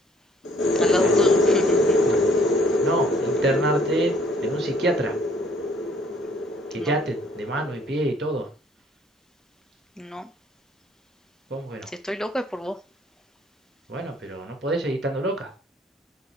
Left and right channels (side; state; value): both; normal; correlation 0.61